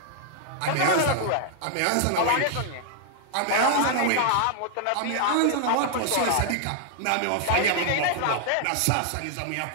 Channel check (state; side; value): different; both; correlation 0.00